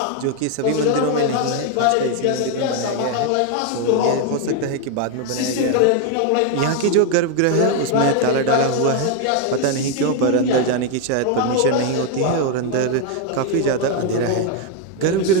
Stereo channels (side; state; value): both; different; correlation 0.01